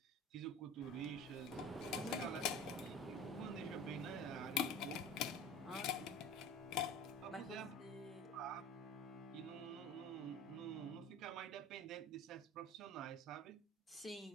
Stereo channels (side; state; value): both; normal; correlation 0.38